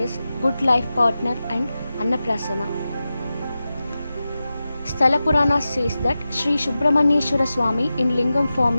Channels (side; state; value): both; inverted; correlation -0.93